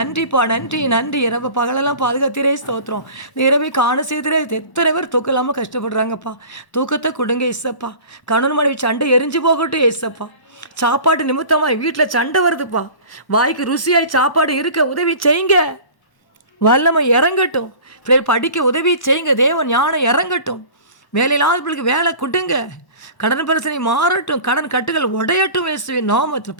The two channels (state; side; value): late; right; 1.1 ms